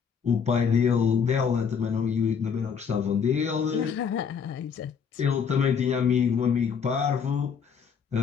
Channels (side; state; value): right; quieter; 6.6 dB